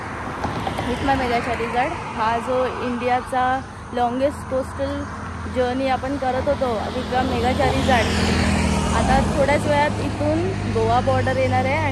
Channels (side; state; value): both; identical; correlation 1.00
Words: विथ माय मेगा चार्लीज. हा जो इंडियाचा लॉंगेस्ट कोस्टल जर्नी आपण करत होतो विक्रम मेगा चार्लीज, आता थोड्याच वेळात इथून गोवा बॉर्डर येणार आहे.